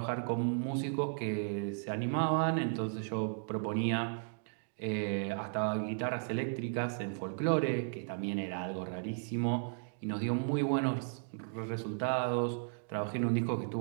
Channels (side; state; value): left; silent; digital silence